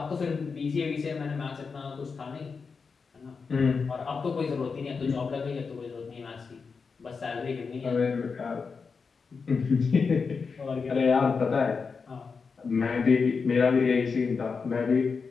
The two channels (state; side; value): quieter; right; 5.1 dB